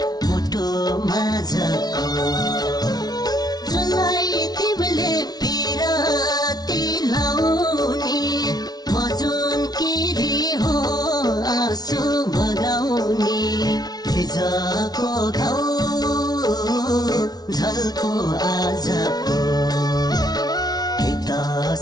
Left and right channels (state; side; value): late; right; 0.19 ms